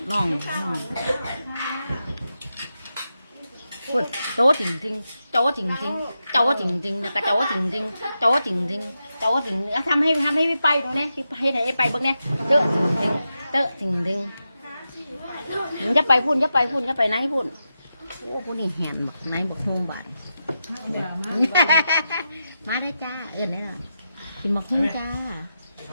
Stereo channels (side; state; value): both; inverted; correlation -0.88